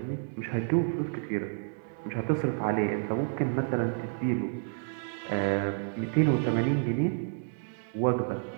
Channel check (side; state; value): left; silent; 58 dB below the other